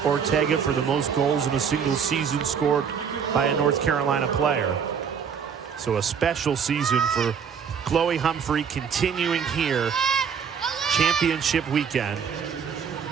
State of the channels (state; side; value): quieter; left; 7.0 dB